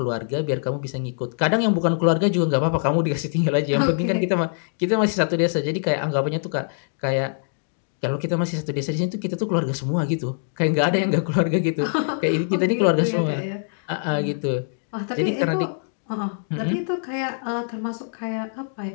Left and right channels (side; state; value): right; silent; digital silence